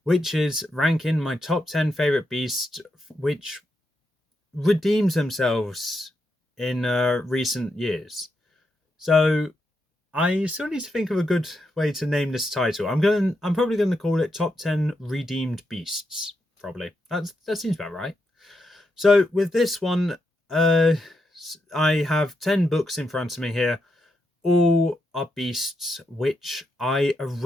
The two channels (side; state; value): both; normal; correlation 0.83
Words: which is ranking my top 10 favorite beasts which redeems themselves in recent years. So I still need to think of a good way to name this title. I'm probably going to call it Top 10 Redeemed Beasts. Probably. That seems about right. So with this one, I have 10 books in front of me here. All are beasts which I